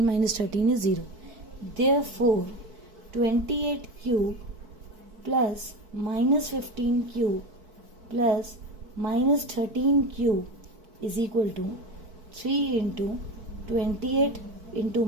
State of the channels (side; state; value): left; late; 4.6 ms